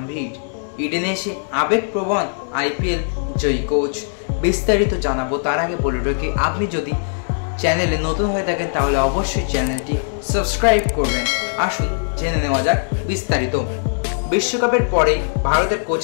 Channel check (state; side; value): silent; right; digital silence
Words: ইডেনে এসে আবেগপ্রবণ আইপিএল জয়ী কোচ। বিস্তারিত জানাবো তার আগে বলে রাখি, আপনি যদি চ্যানেলে নতুন হয়ে থাকেন তাহলে অবশ্যই চ্যানেলটি সাবস্ক্রাইব করবেন। আসুন জেনে নেওয়া যাক বিস্তারিত। বিশ্বকাপের পরেই ভারতের